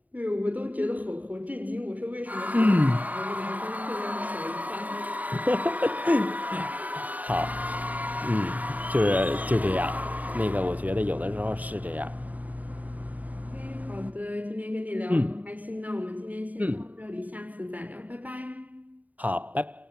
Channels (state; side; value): late; left; 0.075 ms